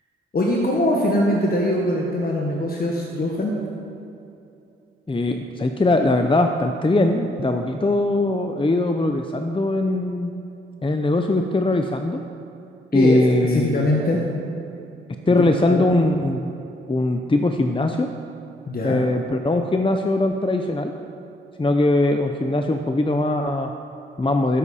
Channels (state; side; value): normal; both; correlation 0.71